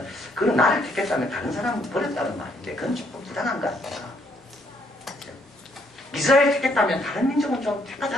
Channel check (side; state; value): both; normal; correlation 0.71